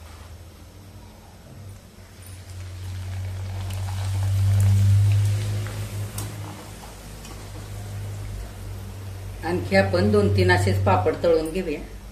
आणखी आपण 2-3 असेच पापड तळून घेऊया.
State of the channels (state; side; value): identical; both; correlation 1.00